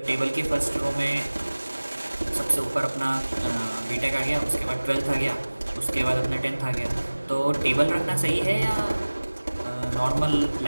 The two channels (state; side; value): inverted; both; correlation -1.00